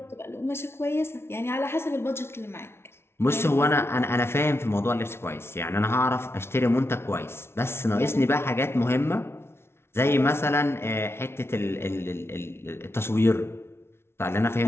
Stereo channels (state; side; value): late; right; 0.12 ms